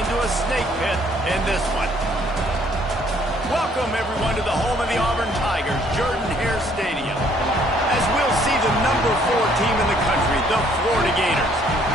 a snake pit in this one. Welcome, everyone, to the home of the Auburn Tigers, Jordan-Hare Stadium. As we'll see the number 4 team in the country, the Florida Gators,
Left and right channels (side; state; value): both; normal; correlation 0.63